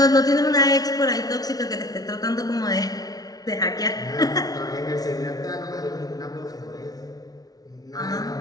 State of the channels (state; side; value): late; right; 0.18 ms